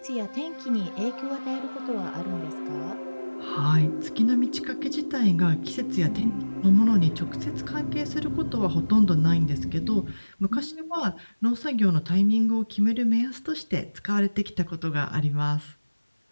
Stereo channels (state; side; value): inverted; both; correlation -1.00